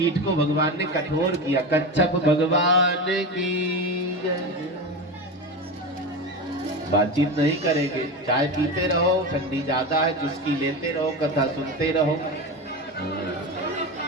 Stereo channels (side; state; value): both; normal; correlation 0.23